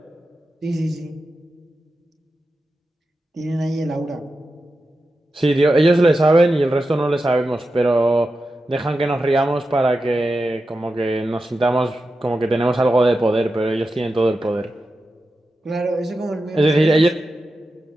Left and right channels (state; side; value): normal; both; correlation 0.91